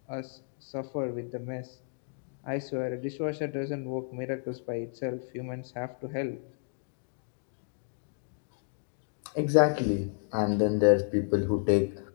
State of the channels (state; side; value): silent; right; digital silence